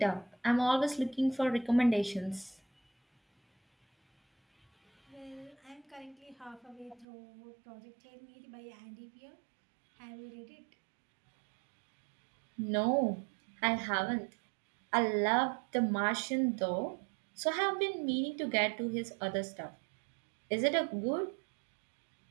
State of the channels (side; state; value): left; drops out; at 7.1 s